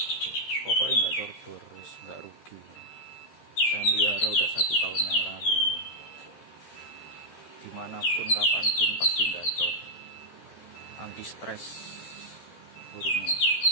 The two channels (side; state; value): right; late; 13 ms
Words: Pokoknya nggak cordor, nggak rugi. Saya melihara udah 1 tahun yang lalu. Dimanapun, kapanpun pasti gacor. Anti stres burungnya.